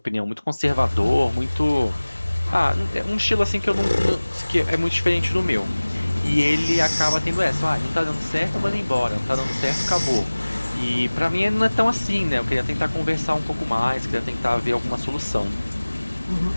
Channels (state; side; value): inverted; both; correlation -1.00